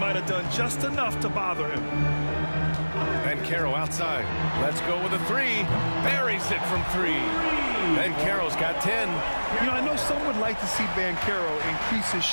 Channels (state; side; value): inverted; both; correlation -1.00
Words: have done just enough to bother him. Banchero outside. Let's go with a 3. Buries it from 3. Banchero's got 10. You know, I know some would like to see Banchero increase his